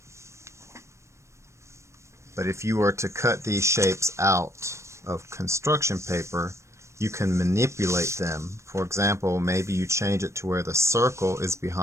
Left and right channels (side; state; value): left; late; 0.14 ms